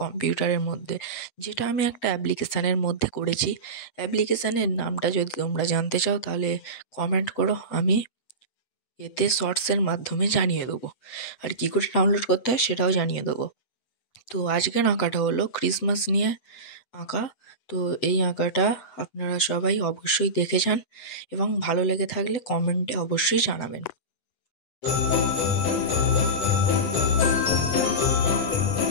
মধ্যে, যেটা আমি একটা অ্যাপ্লিকেশানের মধ্যে করেছি। অ্যাপ্লিকেশানের নামটা যদি তোমরা জানতে চাও তাহলে কমেন্ট করো, আমি এতে শর্টসের মাধ্যমে জানিয়ে দেবো। আর কী করে ডাউনলোড করতে হয় সেটাও জানিয়ে দেবো। তো আজকের আঁকাটা হলো ক্রিসমাস নিয়ে আঁকা। তো এই আঁকাটা আপনারা সবাই অবশ্যই দেখে যান এবং ভালো লেগে থাকলে কমেন্টে অবশ্যই জানাবেন।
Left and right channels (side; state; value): right; late; 8.1 ms